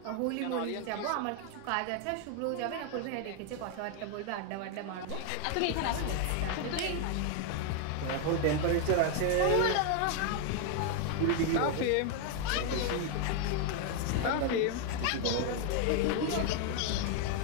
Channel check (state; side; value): different; both; correlation 0.01